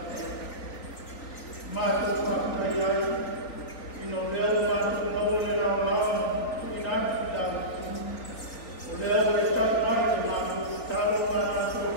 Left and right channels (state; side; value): late; right; 3.7 ms